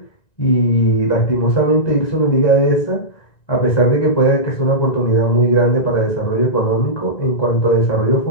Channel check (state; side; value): late; right; 1.9 ms